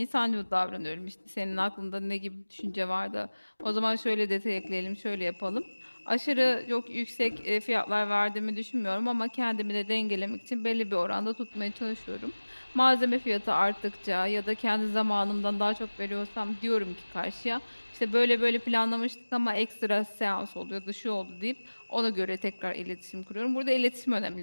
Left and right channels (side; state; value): both; inverted; correlation -1.00